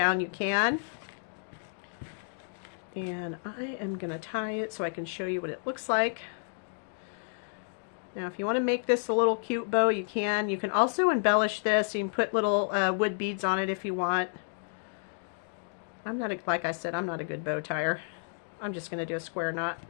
you can. And I am going to tie it so I can show you what it looks like. Now if you want to make this a little cute bow, you can. You can also embellish this. You can put little wood beads on it if you want. I'm not, like I said, I'm not a good bow tire. I'm just going to do a square knot.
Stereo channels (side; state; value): right; silent; digital silence